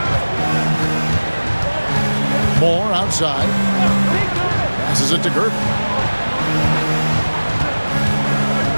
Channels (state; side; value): inverted; both; correlation -1.00